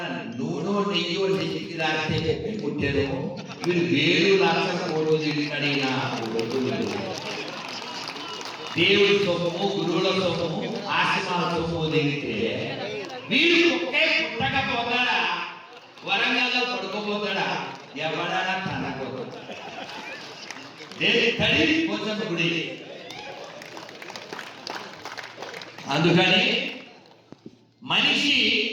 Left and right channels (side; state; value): both; identical; correlation 1.00